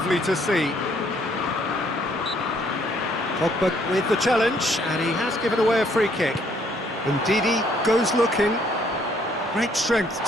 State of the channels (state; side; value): normal; both; correlation 0.66